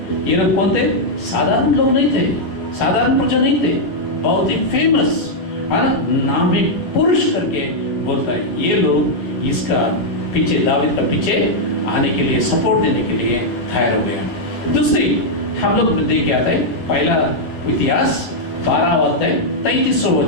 ये लोग कौन थे? साधारण लोग नहीं थे, साधारण प्रजा नहीं थे, बहुत ही फेमस, है ना, नामी पुरुष करके बोलता है। ये लोग इसका पीछे, दाऊद का पीछे आने के लिए, सपोर्ट देने के लिए तैयार हो गया। दूसरी हम लोग देख के आते हैं पहला इतिहास 12 अध्याय 33वां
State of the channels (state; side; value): late; right; 11 ms